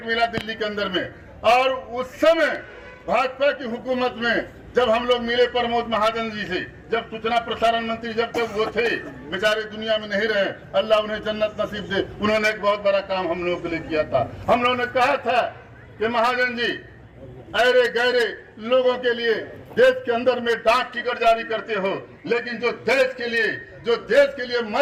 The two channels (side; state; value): both; identical; correlation 1.00